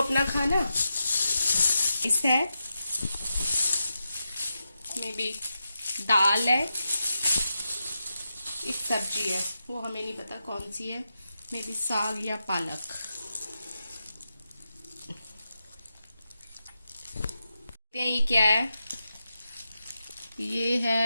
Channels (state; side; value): inverted; both; correlation -0.88